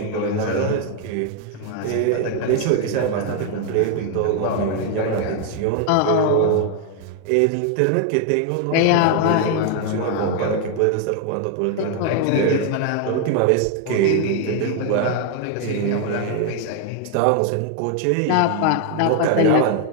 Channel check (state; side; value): different; both; correlation 0.00